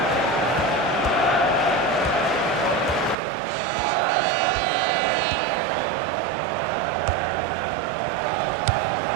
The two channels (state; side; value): drops out; left; at 3.2 s